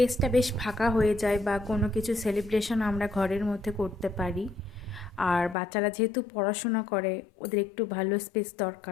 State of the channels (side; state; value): right; drops out; at 5.6 s